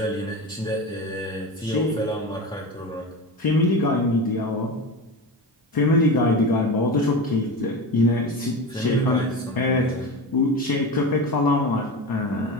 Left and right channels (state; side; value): normal; both; correlation 0.26